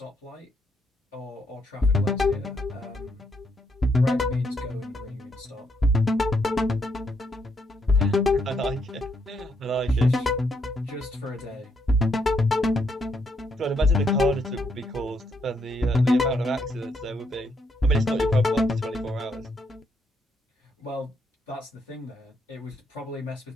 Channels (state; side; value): normal; both; correlation 0.76